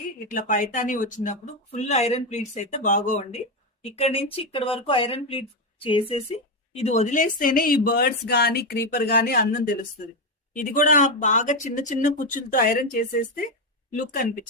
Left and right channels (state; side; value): normal; both; correlation 0.09